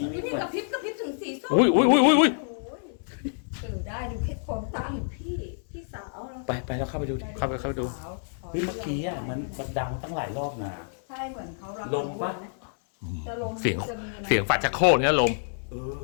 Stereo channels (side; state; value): right; silent; 59 dB below the other